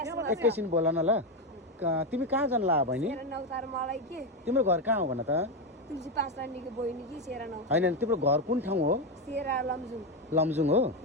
एकैछिन बोल न ल। तिमी कहाँ जान ला बहिनी? तिम्रो घर कहाँ हो भन त? होइन तिम्रो घर कुन ठाउँ हो? लमजुङ हो?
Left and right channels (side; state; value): both; normal; correlation 0.10